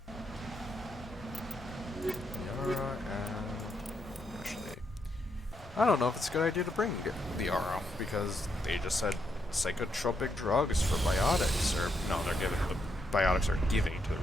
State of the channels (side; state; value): both; normal; correlation 0.79